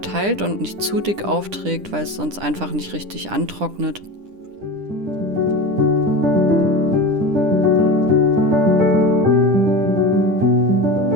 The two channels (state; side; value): late; left; 10 ms